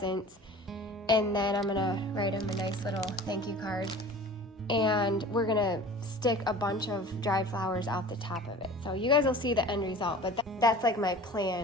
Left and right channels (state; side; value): normal; both; correlation 0.41